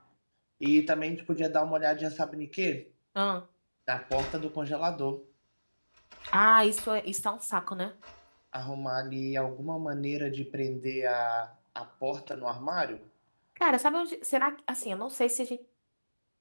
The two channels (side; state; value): both; inverted; correlation -1.00